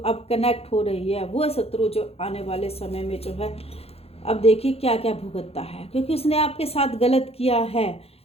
कनेक्ट हो रही है, वो शत्रु जो आने वाले समय में जो है, अब देखिए क्या क्या भुगतता है, क्योंकि उसने आपके साथ गलत किया है।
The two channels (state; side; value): late; right; 0.29 ms